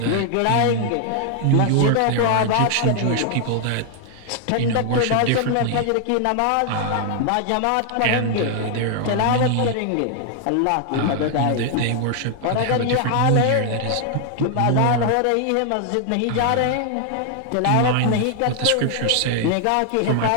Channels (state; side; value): different; both; correlation 0.00